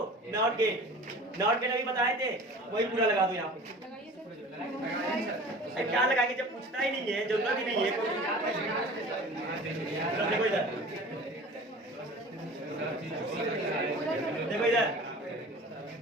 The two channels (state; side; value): normal; both; correlation 0.41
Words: Not gate. नॉट गेट अभी बताए थे, वही पूरा लगा दो यहाँ पे। क्या लगाएंगे जब पूछता ही नहीं है, जरूरत ही नहीं है। देखो इधर, देखो इधर,